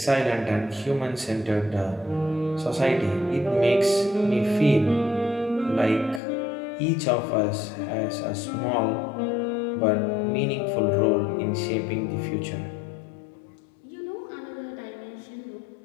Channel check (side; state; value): right; drops out; at 6.2 s